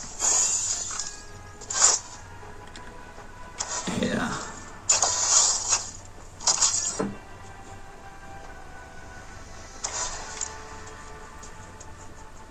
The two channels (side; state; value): both; identical; correlation 1.00